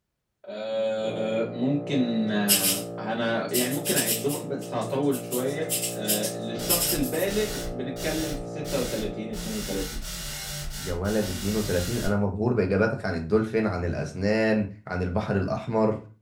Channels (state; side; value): identical; both; correlation 1.00